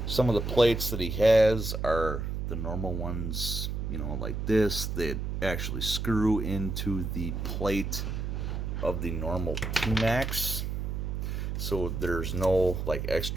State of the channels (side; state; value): right; noise; hum, 3 dB below the sound